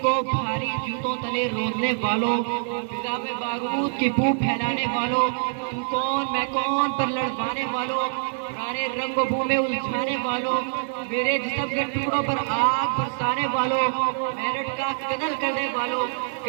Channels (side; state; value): left; silent; digital silence